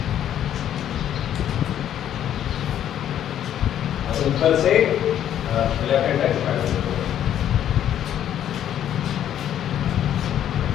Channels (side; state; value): right; quieter; 10.6 dB